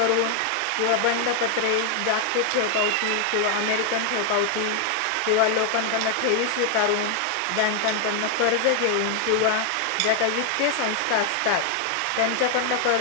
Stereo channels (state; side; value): different; both; correlation 0.00